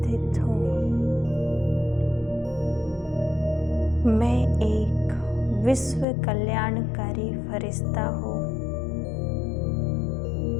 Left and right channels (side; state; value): right; drops out; at 6.1 s